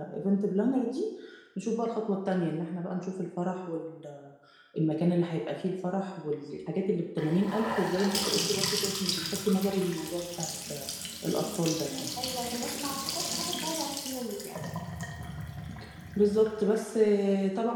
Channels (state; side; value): identical; both; correlation 1.00